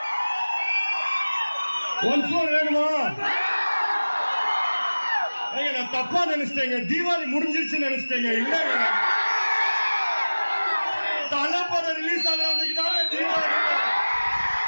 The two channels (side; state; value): both; inverted; correlation -1.00